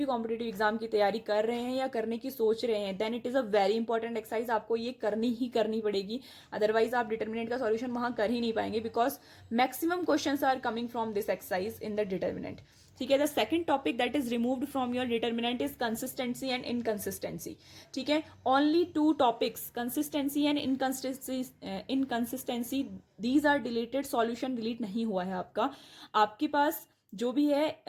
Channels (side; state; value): both; identical; correlation 1.00